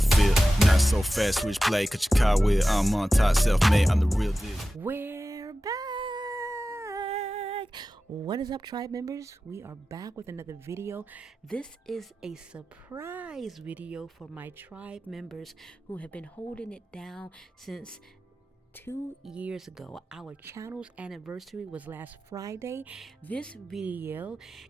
Not so fast, switch play, cut your car with. I'm on top, self-made, I'm the real deal. We're back. What is up, tribe members? We are back with another video. This is a surprise video for my tribe members who have been holding it down since 2 years ago. Our channel's anniversary was last Friday. This video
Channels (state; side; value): normal; both; correlation 0.94